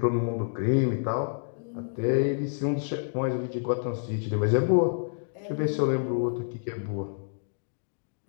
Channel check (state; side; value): silent; right; digital silence